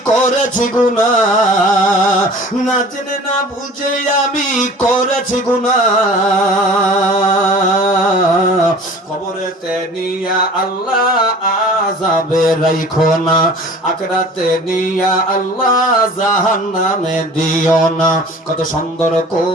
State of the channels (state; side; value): normal; both; correlation 0.44